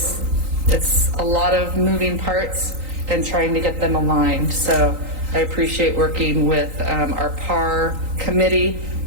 a lot of moving parts and trying to get them aligned. So I appreciate working with our PAR committee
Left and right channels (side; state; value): left; late; 3.9 ms